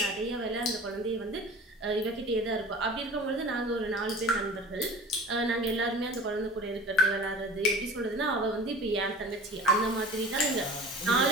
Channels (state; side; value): normal; both; correlation 0.40